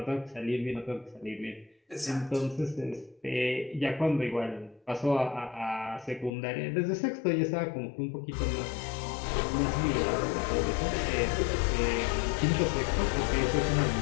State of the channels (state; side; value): drops out; right; at 6.3 s